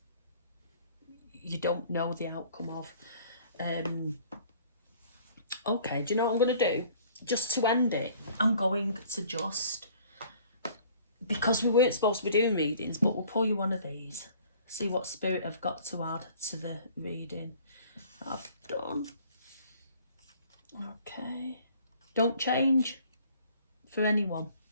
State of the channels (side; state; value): both; inverted; correlation -0.54